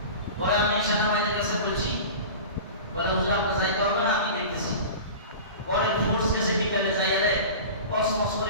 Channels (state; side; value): inverted; both; correlation -0.34